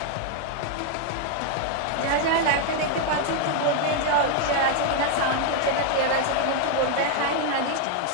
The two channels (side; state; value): both; different; correlation 0.00